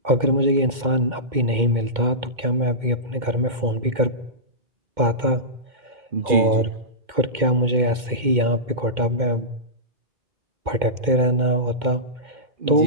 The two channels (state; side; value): late; left; 2.2 ms